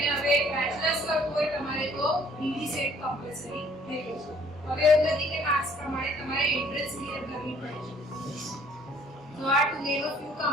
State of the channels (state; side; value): normal; both; correlation 0.59